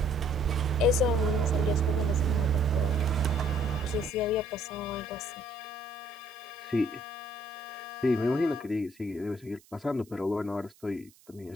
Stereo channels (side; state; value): right; noise; hiss, 28 dB below the sound